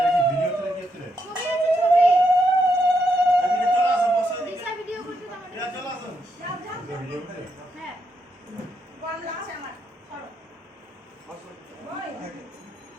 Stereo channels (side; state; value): both; normal; correlation 0.79